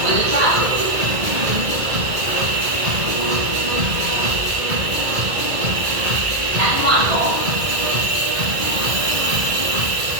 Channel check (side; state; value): left; late; 1.9 ms